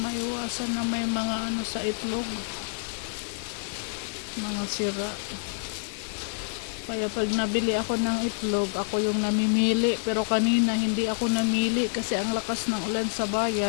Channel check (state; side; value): silent; right; digital silence